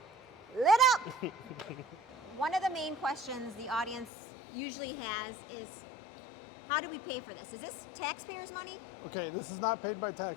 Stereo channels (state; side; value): drops out; right; at 4.1 s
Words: lit up. One of the main questions the audience usually has is, how do we pay for this? Is this taxpayers' money? Okay, this is not paid by